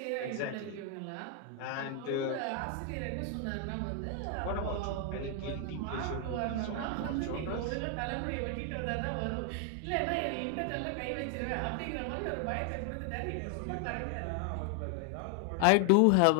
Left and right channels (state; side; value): different; both; correlation 0.00